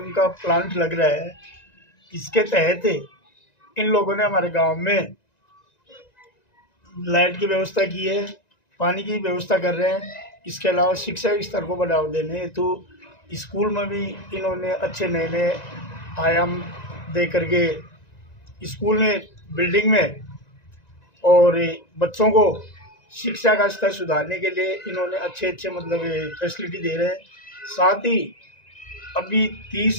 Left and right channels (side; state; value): right; late; 1.9 ms